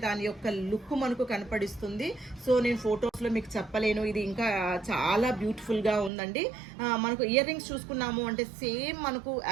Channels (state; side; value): drops out; left; at 6.1 s